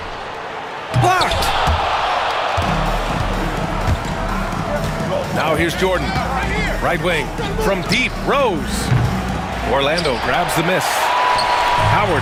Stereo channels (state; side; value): identical; both; correlation 1.00